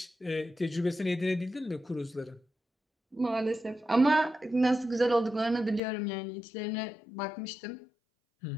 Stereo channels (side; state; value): right; drops out; at 5.8 s